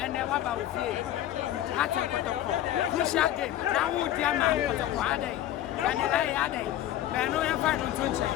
then what about Attácķeď crucial game. Now we dear man Kotoko ade. And I ade. But no you find on Tunche.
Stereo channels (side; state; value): right; quieter; 12.7 dB